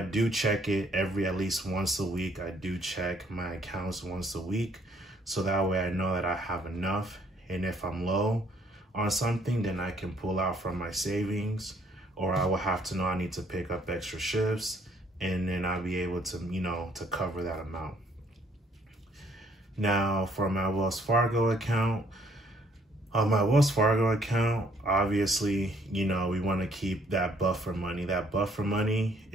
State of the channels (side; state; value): both; normal; correlation 0.64